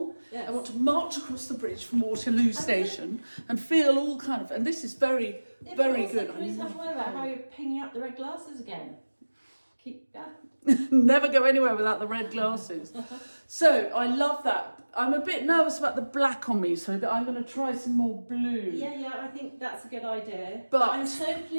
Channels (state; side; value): inverted; both; correlation -1.00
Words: Yes. I want to march across the bridge from Waterloo Station and feel all kind of, and this is very, very good. Can we talk about how you're picking up the red glasses again? Never go anywhere without the red glasses. So I love that. I'm a bit nervous about the black on me, so that I'm going to try some more blue. Yeah, I think that's a good idea. But I'm so